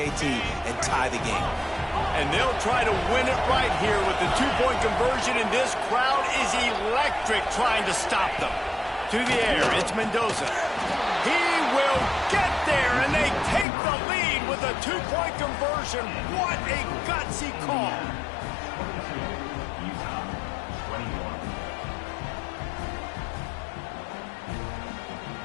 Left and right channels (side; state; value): right; drops out; at 13.7 s